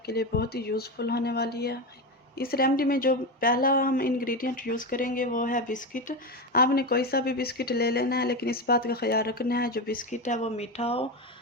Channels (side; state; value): both; normal; correlation 0.17